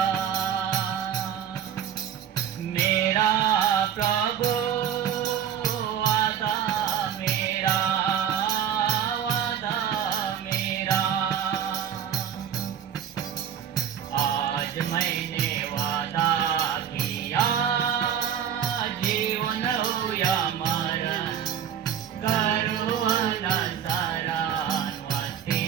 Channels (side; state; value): left; quieter; 8.9 dB